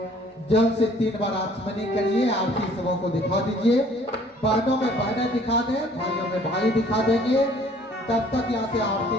जल से 3 बार आचमनी करिए, आरती सबों को दिखा दीजिए। बहनों में बहनें दिखा दें, भाइयों में भाई दिखा देंगे। तब तक यहाँ से आरती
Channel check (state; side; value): normal; both; correlation 0.56